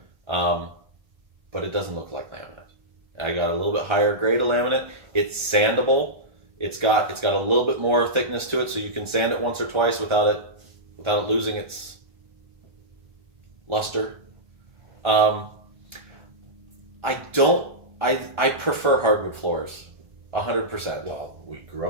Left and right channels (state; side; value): late; left; 1.4 ms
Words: but it doesn't look like laminate. I got a little bit higher grade of laminate. It's sandable. It's got a little bit more thickness to it, so you can sand it once or twice without it losing its luster. I prefer hardwood floors, 100%. Well, we grew